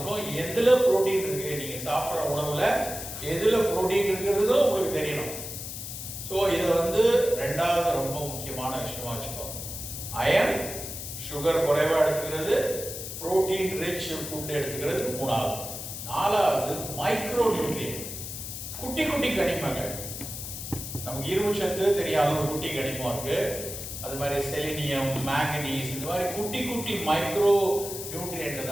எதுல புரோட்டீன் இருக்கு, நீங்க சாப்பிட்ற உணவுல எதுல புரோட்டீன் இருக்கிறதோ உங்களுக்கு தெரியணும். ஸோ இதை ரெண்டாவது ரொம்ப முக்கியமான விஷயமா வச்சுக்கோங்க. அயன், சுகர் குறைவா எடுத்துக்கிறது, புரோட்டீன் ரிச் ஃபுட் எடுத்துக்கிறது மூணாவது. நாலாவது மைக்ரோ நியூட்ரியன்ட், குட்டி குட்டி கனிமங்கள். நமக்கு இரும்பு சத்து தெரியாத ஒரு குட்டி கனிமம் இருக்கு. அது மாதிரி செலினியம், மேங்கனீஸ், இந்த மாதிரி குட்டி குட்டி மைக்ரோ நியூட்ரியன்ட்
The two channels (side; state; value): left; noise; hiss, 8 dB below the sound